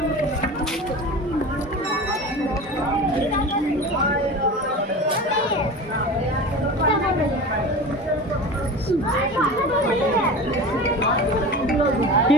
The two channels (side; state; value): both; normal; correlation 0.33